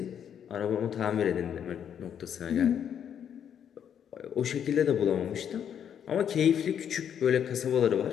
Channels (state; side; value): quieter; right; 8.7 dB